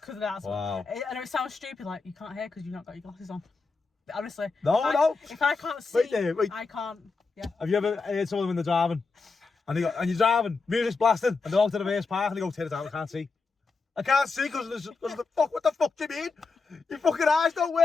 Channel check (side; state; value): right; quieter; 4.3 dB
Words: Because that's Wow. I know it sounds stupid, like you can't hear because you've not got your glasses on. But honestly, No. if I can't see, Wait there, wait. I can't. Yeah. Have you ever heard someone when they're driving, and you're driving, music's blasting, and they're out to the reverse park, and they go, "Turn it down, I can't see." I can't see because of the fuck. What the fuck do you mean? Your fucking eyes don't